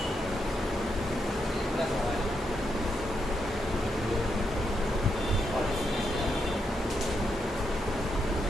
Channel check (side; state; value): both; normal; correlation 0.81